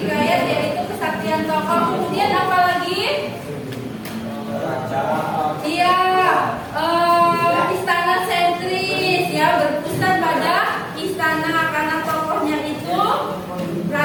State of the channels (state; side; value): identical; both; correlation 1.00